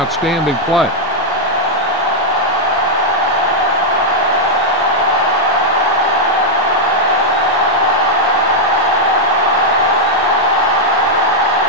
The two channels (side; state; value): both; normal; correlation -0.03